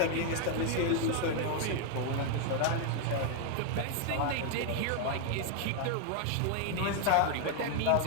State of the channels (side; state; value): both; different; correlation 0.00